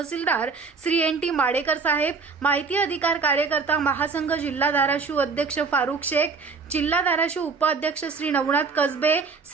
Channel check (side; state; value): left; quieter; 4.8 dB